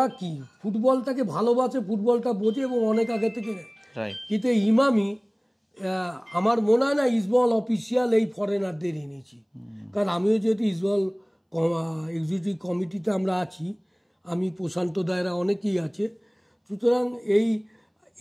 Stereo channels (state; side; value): identical; both; correlation 1.00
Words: কি ফুটবলটাকে ভালোবাসে, ফুটবলটা বোঝে এবং অনেক আগে থেকে। কিন্তু এই ইমামি আমার মনে হয় না ইস্টবেঙ্গল অফিসিয়াল এই ফরেনারদের এনেছি, কারণ আমিও যেহেতু ইস্টবেঙ্গল এক্সিকিউটিভ কমিটিতে আমরা আছি, আমি প্রশান্ত দায়রা অনেকেই আছে। সুতরাং